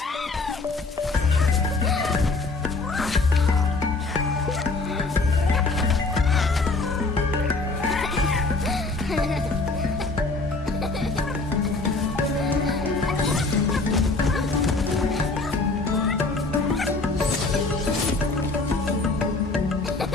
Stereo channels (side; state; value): right; quieter; 3.5 dB